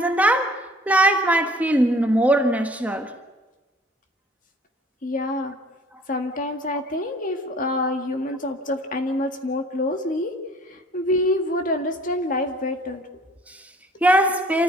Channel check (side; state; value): both; normal; correlation 0.53